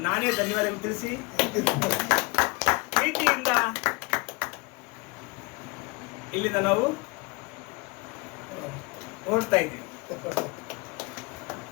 ನಾನೇ ಧನ್ಯವಾದ ತಿಳಿಸಿ ಪ್ರೀತಿಯಿಂದ ಇಲ್ಲಿಂದ ನಾವು ಹೊರಡ್ತಾ ಇದ್ದೀವಿ.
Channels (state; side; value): quieter; right; 26.6 dB